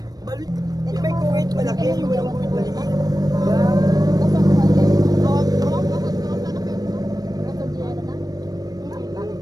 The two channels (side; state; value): left; late; 0.19 ms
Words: Balit. Yung may kuwait malaki, yung walang kuwait maliit.